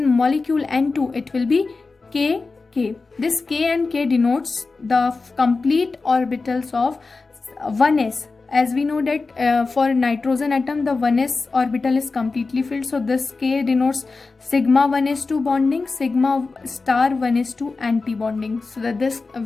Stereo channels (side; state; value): right; quieter; 4.0 dB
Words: molecule N2, it will be K. This K and K denotes the complete orbitals of 1s. As we know that for nitrogen atom the 1s orbital is completely filled, so this K denotes sigma 1s2 bonding, sigma star 1s2 anti-bonding. So that this